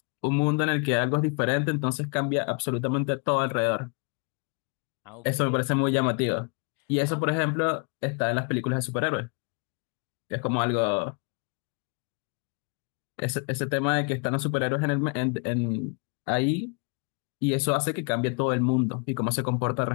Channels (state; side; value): quieter; right; 36.3 dB